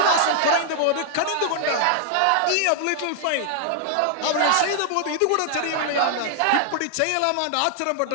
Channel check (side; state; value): both; different; correlation 0.00